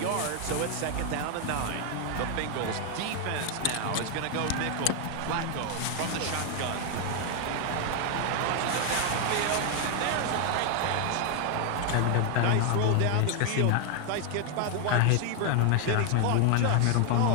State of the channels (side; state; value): both; different; correlation 0.00